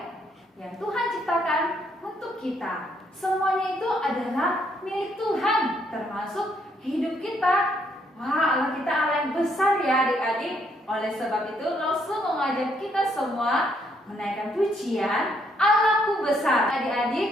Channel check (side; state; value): both; normal; correlation 0.71